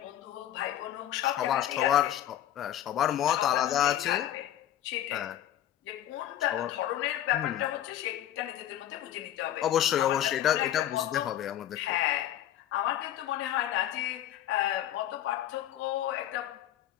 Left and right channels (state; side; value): quieter; right; 11.9 dB